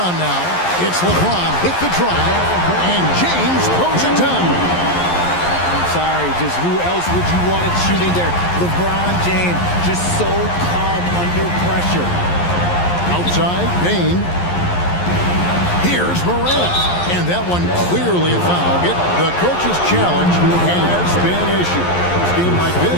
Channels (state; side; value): late; right; 11 ms